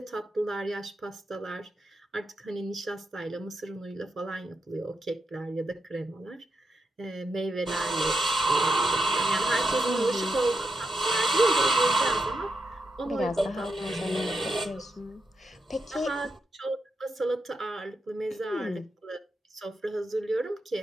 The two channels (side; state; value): both; normal; correlation 0.85